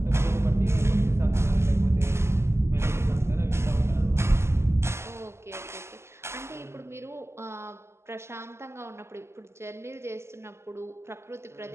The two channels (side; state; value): left; late; 0.13 ms